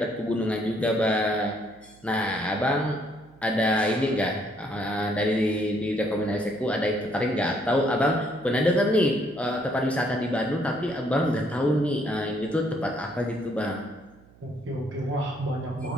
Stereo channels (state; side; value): noise; right; hum, 26 dB below the sound